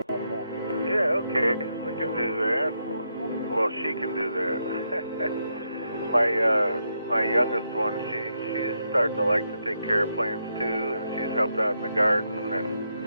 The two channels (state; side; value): inverted; both; correlation -0.80